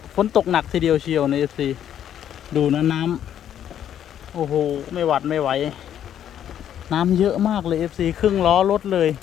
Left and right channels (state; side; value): quieter; right; 10.1 dB